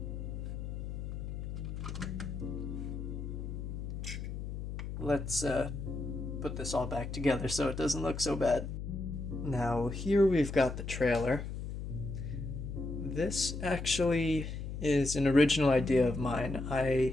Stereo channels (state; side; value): noise; left; hum, 6 dB below the sound